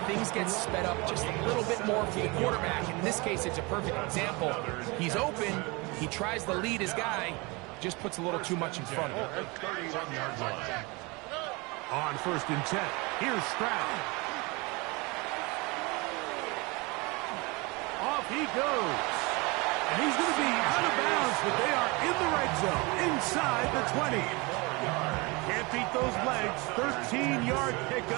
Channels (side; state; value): left; quieter; 26.4 dB